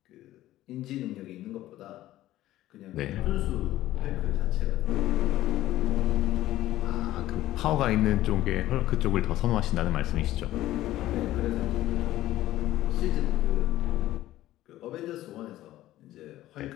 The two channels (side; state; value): right; quieter; 14.9 dB